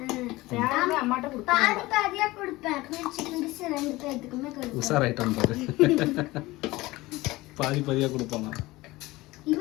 அம்மாட்ட பாதி பாதியா கொடுப்பேன். சிக்கன் டிஷ் 2 பேத்துக்குமே கொடுப்பேன். உஷாராயிட்டான் பாரு. பாதி பாதியா கொடுப்பாங்க.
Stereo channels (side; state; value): right; quieter; 19.7 dB